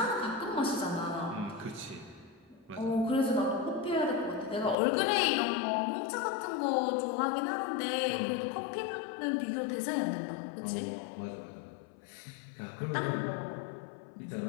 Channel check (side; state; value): right; drops out; at 4.8 s